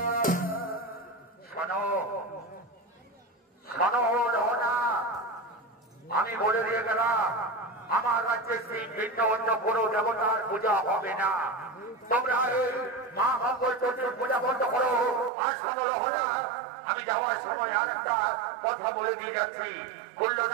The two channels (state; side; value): drops out; left; at 15.3 s